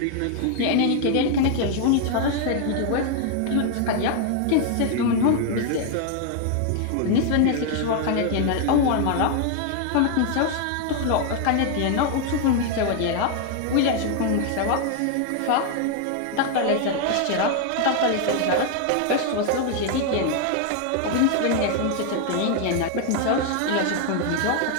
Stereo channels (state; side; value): different; both; correlation 0.00